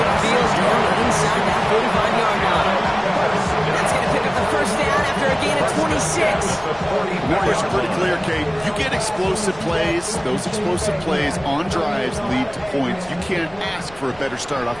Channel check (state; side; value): noise; right; rumble, 23 dB below the sound